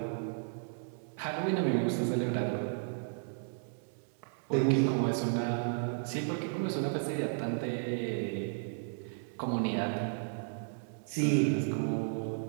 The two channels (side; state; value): left; silent; digital silence